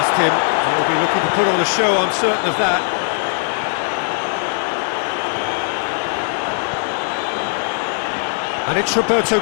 him. He'll be looking to put on a show, I'm certain of that. And it's Roberto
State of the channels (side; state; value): right; silent; digital silence